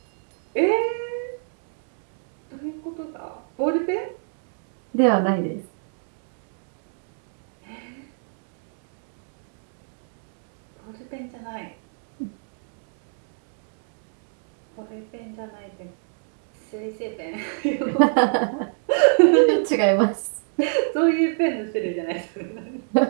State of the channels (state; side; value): silent; left; digital silence